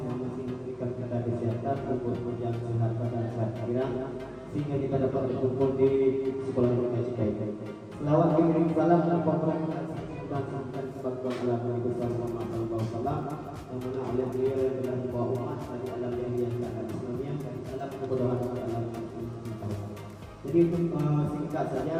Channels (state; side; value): identical; both; correlation 1.00